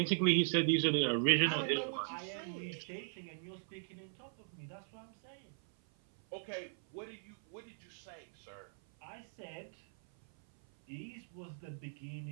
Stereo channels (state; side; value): silent; left; 52 dB below the other